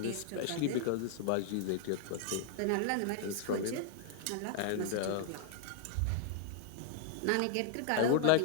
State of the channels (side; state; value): both; different; correlation -0.01